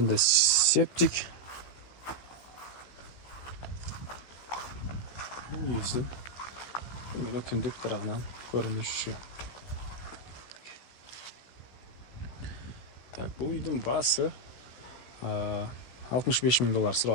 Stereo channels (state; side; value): late; right; 16 ms